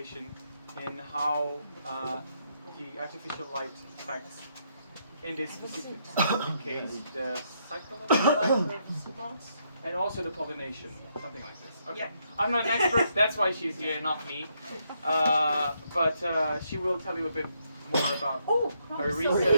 in how the artificial light affects, in this specific case, the psychological life of moths, and also the pollination, something like this. Okay, yeah. I'm not an expert, that's why she's here, not me. But she will tell you a bit more about her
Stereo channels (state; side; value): inverted; both; correlation -0.76